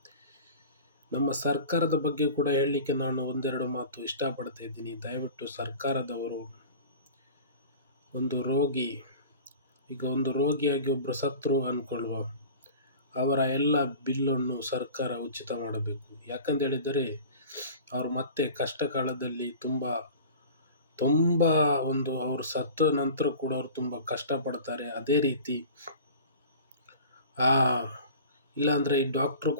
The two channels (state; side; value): inverted; both; correlation -0.39